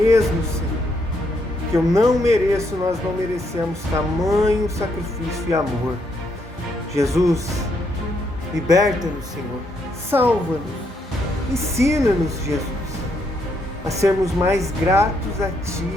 Senhor, que eu não mereço, nós não merecemos tamanho sacrifício e amor. Jesus, liberta-nos, Senhor, salva-nos, ensina-nos, Jesus, a sermos mais gratos a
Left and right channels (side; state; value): both; normal; correlation 0.75